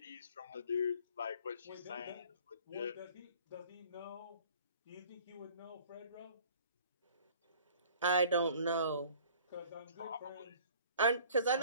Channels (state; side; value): inverted; both; correlation -0.52